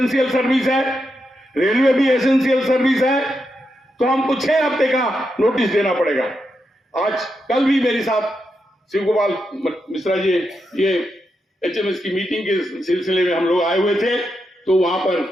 सर्विस है, रेलवे भी एसेंशियल सर्विस है, तो हमको 6 हफ्ते का नोटिस देना पड़ेगा। आज कल भी मेरे साथ शिव गोपाल मिश्रा जी ये एचएमएस की मीटिंग के सिलसिले में हम लोग आए हुए थे, तो वहां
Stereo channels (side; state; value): both; normal; correlation 0.84